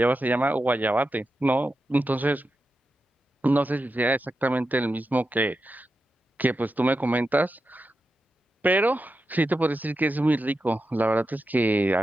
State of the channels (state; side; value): normal; both; correlation 0.89